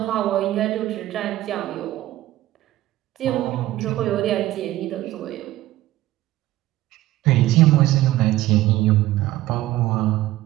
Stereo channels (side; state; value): left; quieter; 15.6 dB